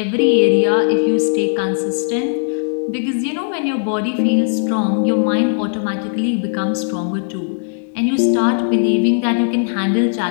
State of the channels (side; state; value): right; silent; digital silence